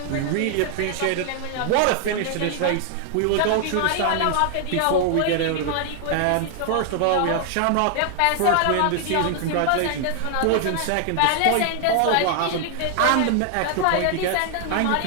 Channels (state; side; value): different; both; correlation 0.00